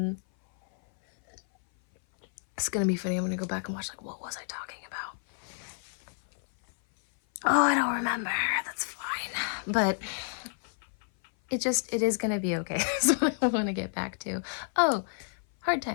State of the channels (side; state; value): right; silent; 56 dB below the other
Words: It's gonna be funny. I'm gonna go back and watch, like, what was I talking about? Oh, I don't remember. That's fine. But it is gonna be okay. That's what I want to get back to. Oh, hard